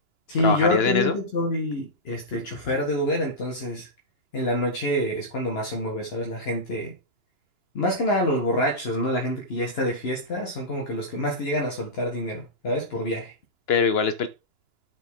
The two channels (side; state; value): right; late; 2.9 ms